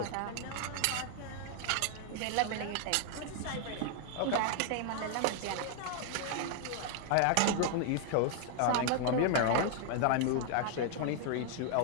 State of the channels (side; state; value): both; different; correlation 0.00